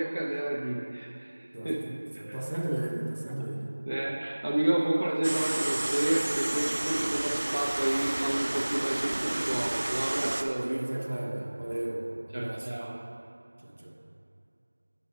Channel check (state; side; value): inverted; both; correlation -1.00